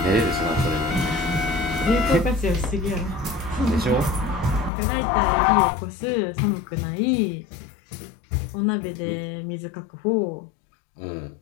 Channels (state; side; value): drops out; right; at 4.7 s